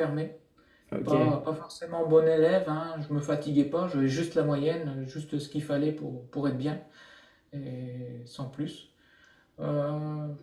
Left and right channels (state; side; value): identical; both; correlation 1.00